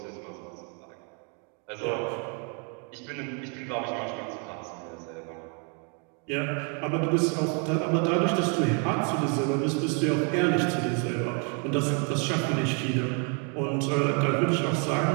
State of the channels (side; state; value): left; quieter; 38.2 dB